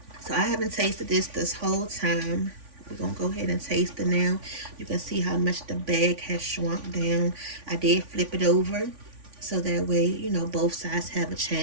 So I haven't tasted this whole time. We're gonna go ahead and taste it now. You can see how much the bag has shrunk down. I did flip it over so that way, you know, both sides have a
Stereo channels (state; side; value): late; left; 3.5 ms